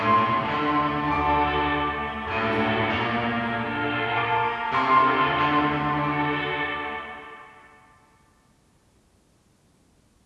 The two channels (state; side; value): identical; both; correlation 1.00